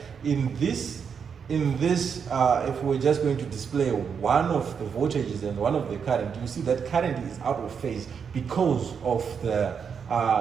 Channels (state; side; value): quieter; left; 6.7 dB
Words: In this, if we're just going to display one of the voltages and one of the current, you see that current is out of phase because of the